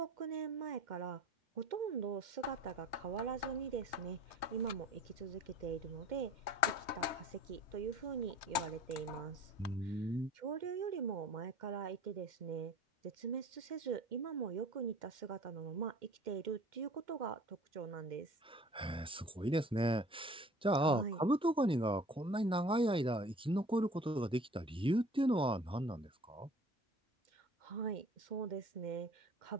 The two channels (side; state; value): both; normal; correlation 0.47